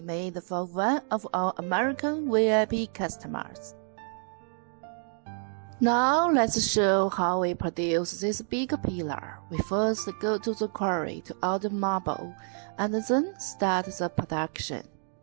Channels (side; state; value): left; silent; 59 dB below the other